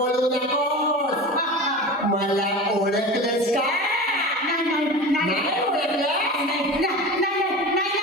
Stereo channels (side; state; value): both; normal; correlation 0.31